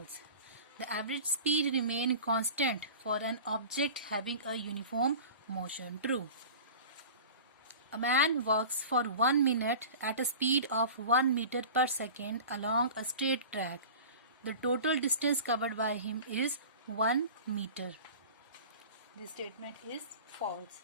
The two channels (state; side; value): inverted; both; correlation -0.37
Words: The average speed remains constant for an object having a uniform motion. True. A man walks for 1 minute at a speed of 1 meter per second along a straight track. The total distance covered by him is 1 meter. This statement is false.